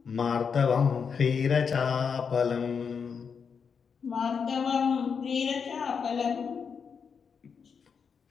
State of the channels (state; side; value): quieter; right; 6.2 dB